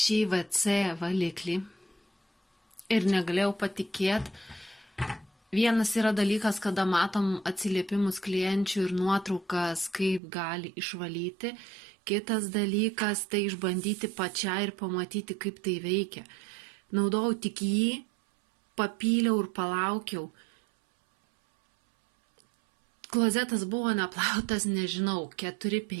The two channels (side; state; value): left; drops out; at 10.2 s